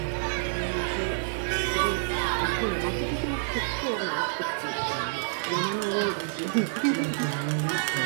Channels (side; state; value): left; silent; 59 dB below the other